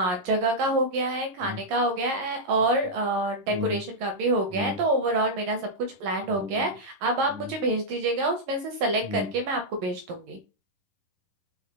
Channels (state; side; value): late; left; 11 ms